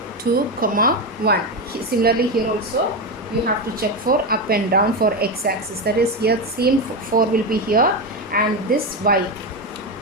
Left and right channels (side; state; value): both; normal; correlation 0.13